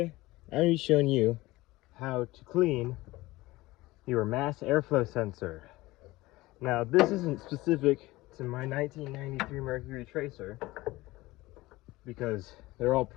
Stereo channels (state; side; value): quieter; right; 19.5 dB